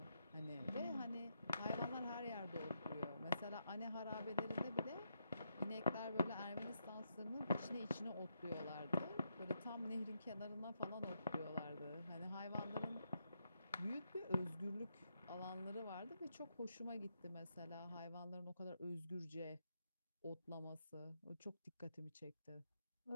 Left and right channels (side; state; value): both; inverted; correlation -0.80